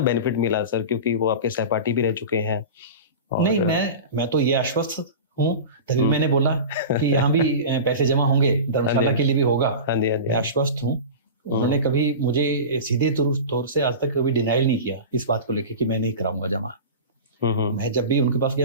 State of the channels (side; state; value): both; inverted; correlation -0.30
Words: बेनिफिट मिला सर, क्योंकि वो आपके सहपाठी भी रह चुके हैं? नहीं, मैं तो ये आश्वस्त हूँ, तभी मैंने बोला कि यहाँ भी पैसे जमा होंगे, धर्मशाला के लिए भी होगा। आश्वस्त हूँ। उन्होंने कभी मुझे सीधे तौर से आज तक कभी डिनाइल नहीं किया इस बात को लेकर कि मैं नहीं कराऊंगा जमा। मैं जब भी उनके पास